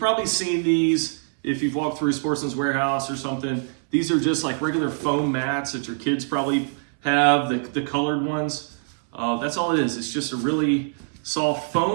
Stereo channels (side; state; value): left; silent; 63 dB below the other